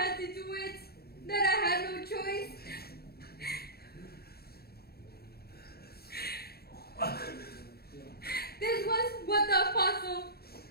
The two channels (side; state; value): right; late; 0.46 ms